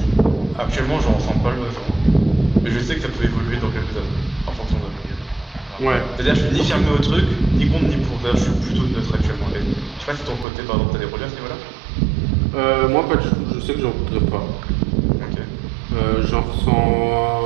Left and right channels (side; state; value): left; drops out; at 10.5 s